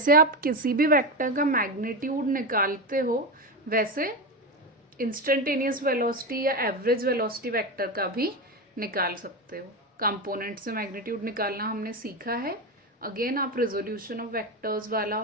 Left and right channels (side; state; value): both; normal; correlation 0.17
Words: आप किसी भी वेक्टर का मैग्नीट्यूड निकालते हो, वैसे इंस्टेंटेनियस वेलोसिटी या एवरेज वेलोसिटी वेक्टर का भी निकाल सकते हो। कंपोनेंट से मैग्नीट्यूड निकालना हमने सीखा है। अगेन आप रेजोल्यूशन ऑफ वेक्टर्स वाला